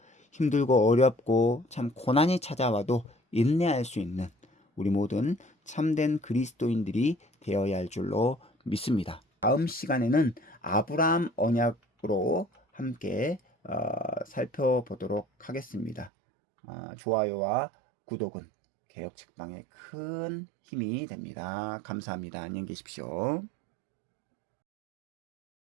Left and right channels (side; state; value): left; drops out; at 16.1 s